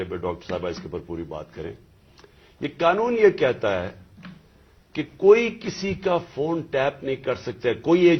ڈاکٹر صاحبہ اس کے اوپر پوری بات کریں. یہ قانون یہ کہتا ہے کہ کوئی کسی کا فون ٹیپ نہیں کر سکتا. کوئی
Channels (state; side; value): identical; both; correlation 1.00